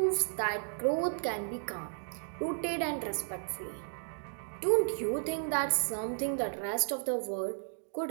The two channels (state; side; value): silent; left; digital silence